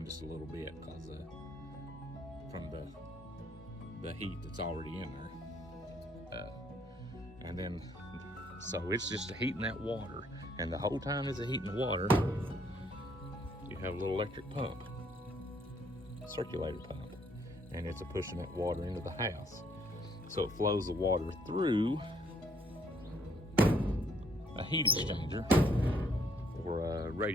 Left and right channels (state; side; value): normal; both; correlation 0.67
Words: just a little bit because from the heat that's already in there. And then, so it's just heating that water. And the whole time it's heating the water, you have a little electric pump, circulator pump, and it's pushing that water into the house. So it flows the water through a heat exchanger, or a